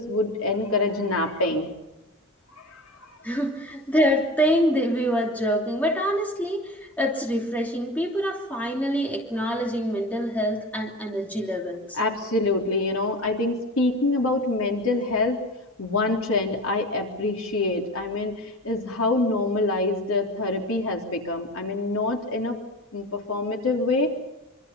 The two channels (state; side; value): normal; both; correlation 0.32